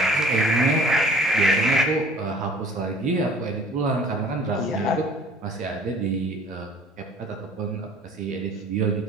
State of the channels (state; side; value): normal; both; correlation 0.51